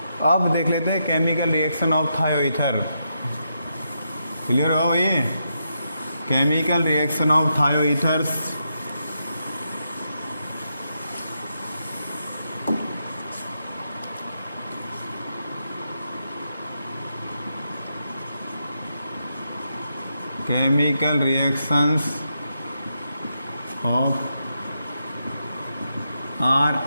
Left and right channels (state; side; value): inverted; both; correlation -0.83